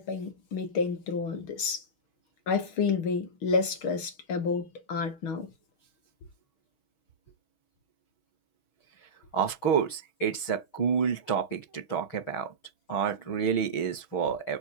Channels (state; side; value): late; right; 6.4 ms